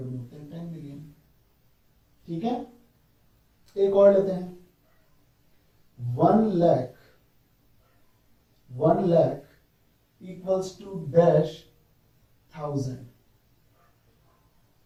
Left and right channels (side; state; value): both; identical; correlation 1.00